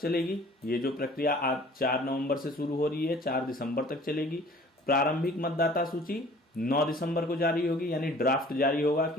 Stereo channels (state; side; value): normal; both; correlation 0.50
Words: ये जो प्रक्रिया आज 4 नवंबर से शुरू हो रही है 4 दिसंबर तक चलेगी। प्रारंभिक मतदाता सूची 9 दिसंबर को जारी होगी, यानी ड्राफ्ट जारी होगा